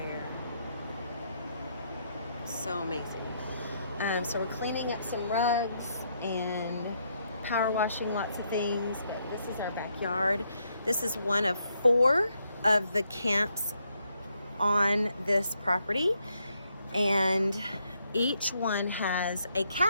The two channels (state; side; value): inverted; both; correlation -0.76